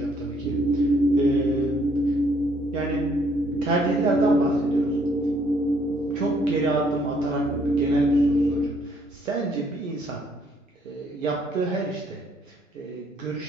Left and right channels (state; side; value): normal; both; correlation 0.66